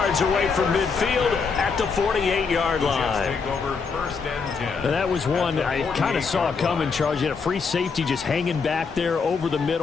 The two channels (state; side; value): quieter; right; 5.2 dB